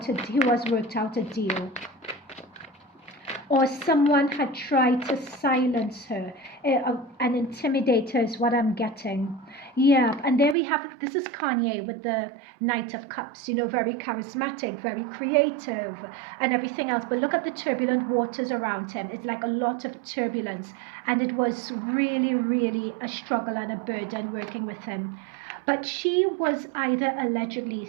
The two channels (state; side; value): drops out; left; at 10.6 s